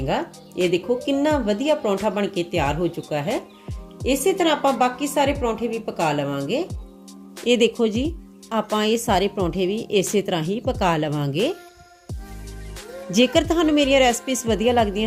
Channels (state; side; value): identical; both; correlation 1.00